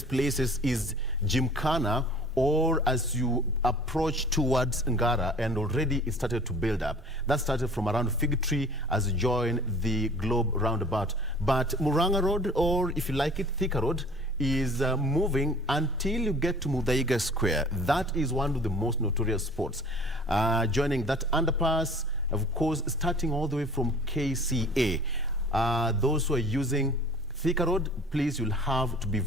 places is Gymkhana, or as you approach towards Ngara, and already it started to build up. That started from around Fig Tree as you join the Globe roundabout. But Muranga Road, or if you like it, Thika Road, is moving until you get to Muthaiga Square. That is one of the most notorious spots. Joining that underpass, of course, starting all the way from KCA. Those who are using Thika Road, please, you'll have to be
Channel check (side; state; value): right; noise; hum, 27 dB below the sound